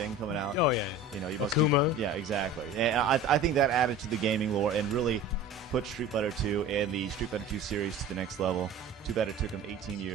coming out. Oh, yeah. You know, you must Akuma. yeah, exactly. And I think that added to the gaming lore and really put Street Fighter 2 and the Street Fighter 2 series to the next level. Too bad it took them 18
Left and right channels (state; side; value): quieter; left; 3.2 dB